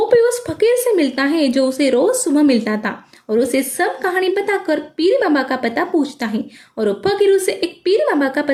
उस फकीर से मिलता है जो उसे रोज सुबह मिलता था और उसे सब कहानी बताकर पीर बाबा का पता पूछता है, और वो फकीर उसे एक पीर बाबा का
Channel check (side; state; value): both; identical; correlation 1.00